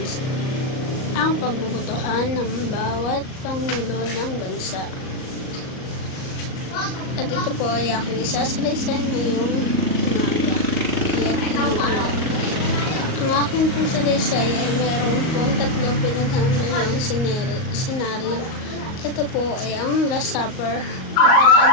Ang pagbubutuhan ng bawat Pangulo ng Bansa. At ito po ay aking isasalaysay ngayong umaga. Ang aking pong salaysay ay mayroon pong tatlong pinaghambalang senaryo. Ito po ay ang Last Supper, ang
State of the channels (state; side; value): late; right; 38 ms